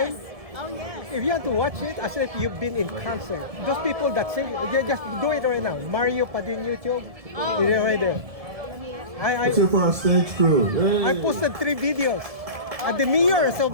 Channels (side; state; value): left; late; 1.7 ms